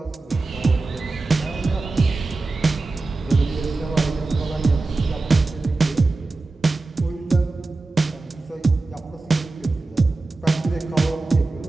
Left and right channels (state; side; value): quieter; left; 3.4 dB